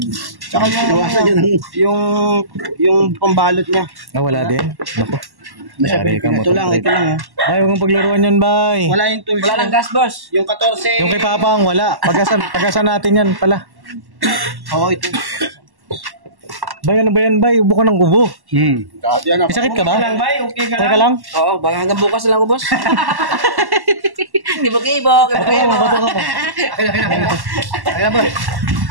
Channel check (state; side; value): late; left; 1.1 ms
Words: Tsaka yung pambalot niya. Ah, wala din. Naku. Yari ka, Ito Motor lang, Trade. ito lang. Bay, huwag mong paglaruan yan, bay. Wala yung tools. Wala lang gas, boss. Yung 14. Yung kay Papang, wala. Pagasan natin yan pala. Oo, ito. Bay, ano ba yan, bay? Ubo ka ng ubo. May sakit ka ba? Bay, okay ka Okay ka lang? Oo, baka hanggang bukas lang ako, boss. Gibo. Oo, bato ka pa. Kaya ba?